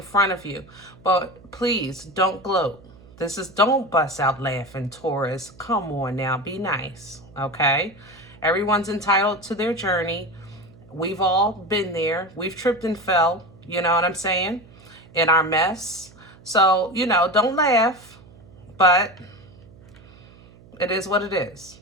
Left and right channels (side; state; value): right; noise; hum, 23 dB below the sound